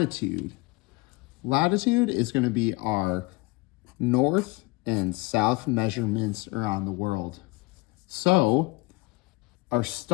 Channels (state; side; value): quieter; right; 23.5 dB